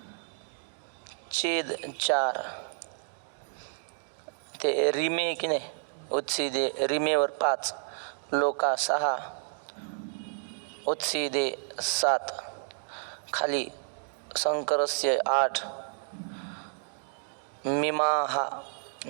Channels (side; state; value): left; silent; 57 dB below the other